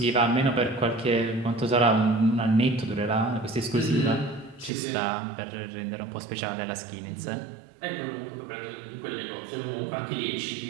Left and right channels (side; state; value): left; drops out; at 4.7 s